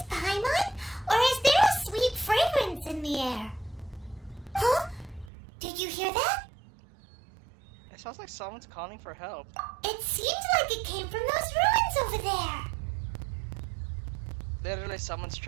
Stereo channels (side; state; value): left; drops out; at 5.3 s